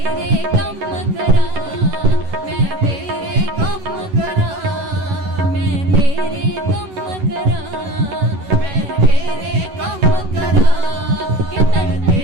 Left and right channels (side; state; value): left; late; 11 ms